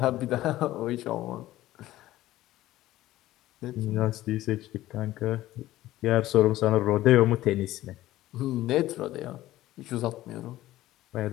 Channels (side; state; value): right; quieter; 15.5 dB